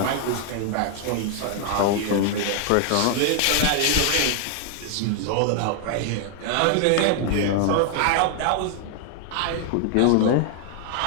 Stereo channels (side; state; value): both; different; correlation 0.00